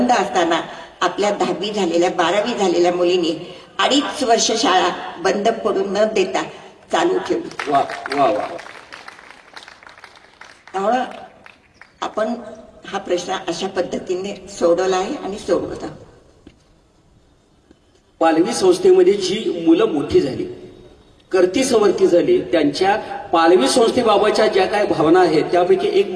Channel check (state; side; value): identical; both; correlation 1.00